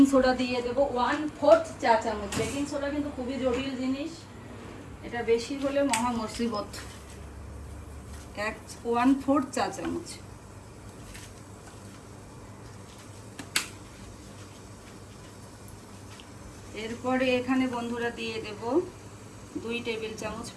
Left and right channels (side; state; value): both; identical; correlation 1.00